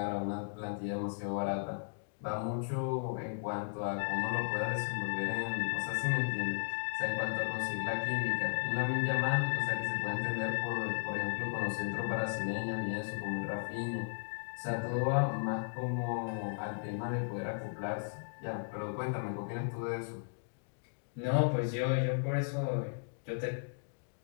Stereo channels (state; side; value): silent; right; digital silence